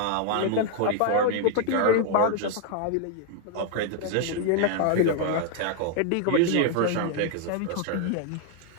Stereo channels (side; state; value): both; different; correlation 0.00